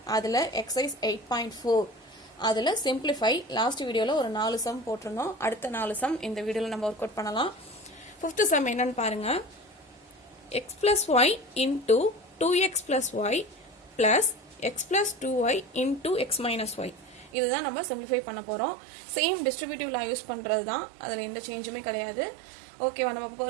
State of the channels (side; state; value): left; drops out; at 17.3 s